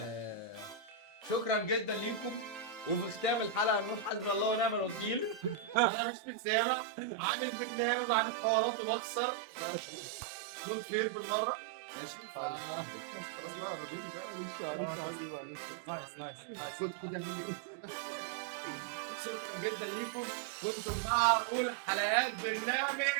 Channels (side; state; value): left; drops out; at 5.9 s